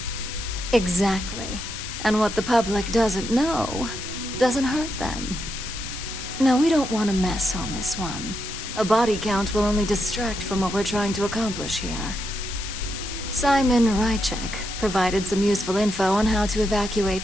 Exactly. And what the public doesn't know doesn't hurt them. Now, we don't want to mess on this one. A body count will only distract from what we're trying to accomplish here. Simon Rychek provided some useful info on how to evacuate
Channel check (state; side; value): noise; left; hiss, 8 dB below the sound